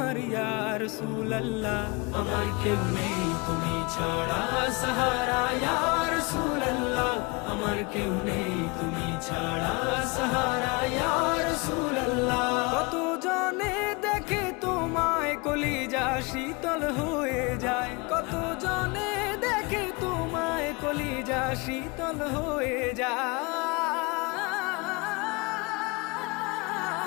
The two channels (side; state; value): right; quieter; 27.3 dB